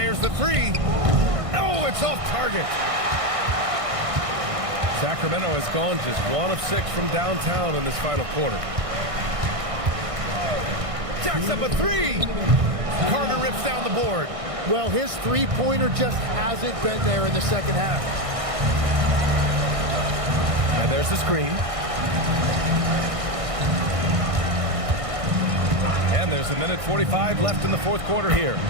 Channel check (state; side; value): late; left; 1.6 ms